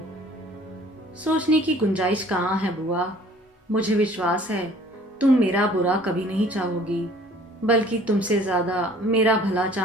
सोचने की गुंजाइश कहाँ है बुआ? मुझे विश्वास है तुम मेरा बुरा कभी नहीं चाहोगी, बल्कि तुमसे ज्यादा मेरा भला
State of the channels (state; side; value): normal; both; correlation 0.53